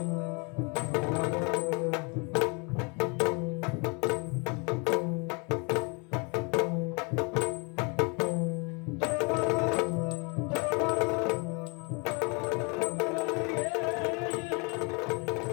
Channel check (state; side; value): quieter; right; 31.3 dB